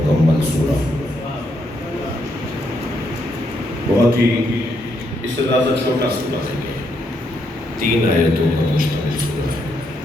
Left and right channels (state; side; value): normal; both; correlation 0.77